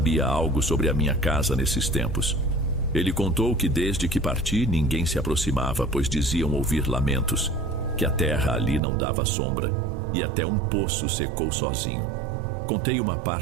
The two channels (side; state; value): left; drops out; at 8.8 s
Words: algo sobre a minha casa nesses tempos. Ele contou que desde que parti ninguém se aproximava, pois diziam ouvir lamentos, que a terra ali não dava sombra e até um poço secou sozinho. Contei uma